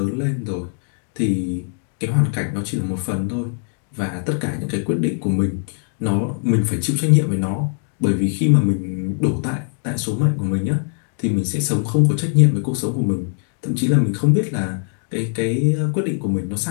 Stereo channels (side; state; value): right; silent; 62 dB below the other